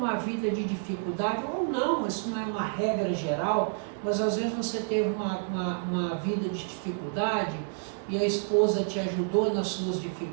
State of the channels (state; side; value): silent; left; 58 dB below the other